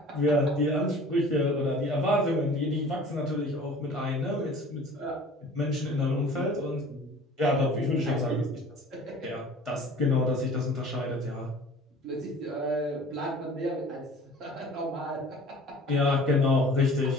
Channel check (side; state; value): both; normal; correlation 0.46